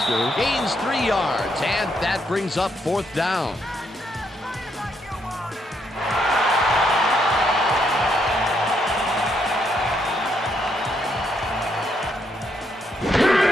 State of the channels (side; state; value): both; normal; correlation 0.75